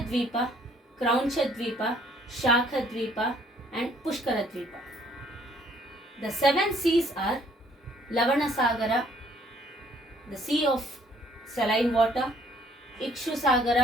Kraunchadvipa, Shakhadvipa and Pushkaradvipa. The 7 seas are Lavanasagara, the sea of saline water,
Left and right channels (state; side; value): normal; both; correlation 0.62